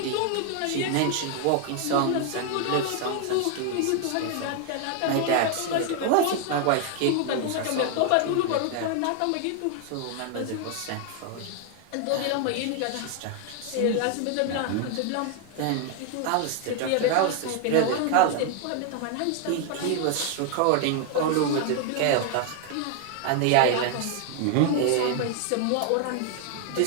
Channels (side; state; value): both; different; correlation 0.00